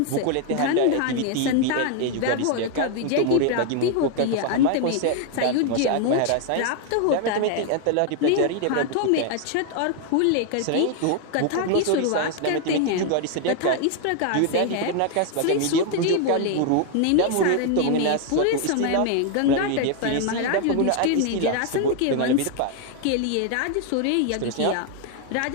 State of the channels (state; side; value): different; both; correlation 0.00